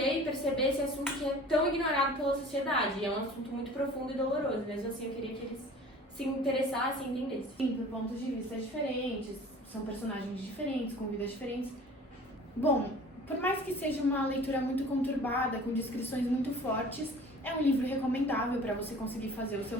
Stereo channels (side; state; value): both; normal; correlation 0.45